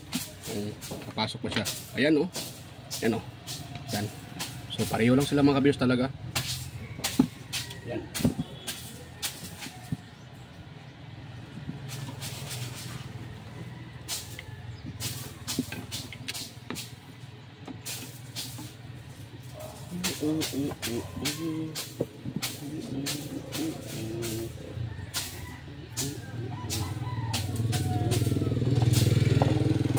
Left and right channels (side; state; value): both; identical; correlation 1.00